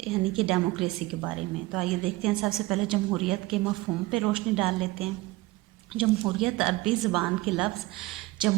यानी कि डेमोक्रेसी के बारे में। तो आइए देखते हैं, सबसे पहले जमहूरियत के मफ़हूम पे रोशनी डाल लेते हैं। जमहूरियत अरबी ज़बान के लफ्ज़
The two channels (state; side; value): quieter; left; 19.9 dB